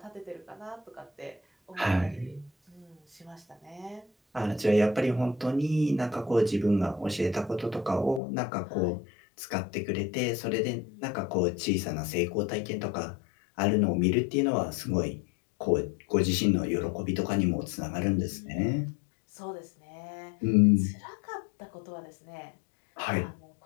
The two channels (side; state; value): right; drops out; at 8.2 s